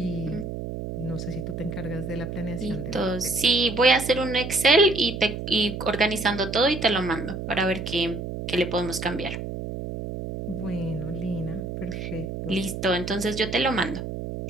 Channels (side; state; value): right; noise; hum, 6 dB below the sound